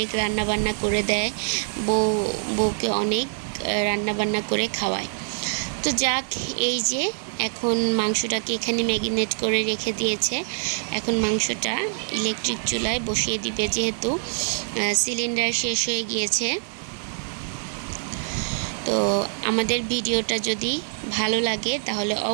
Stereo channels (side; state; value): left; silent; 62 dB below the other